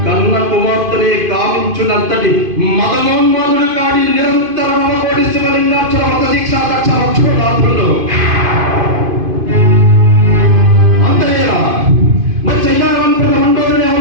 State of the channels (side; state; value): left; late; 2.5 ms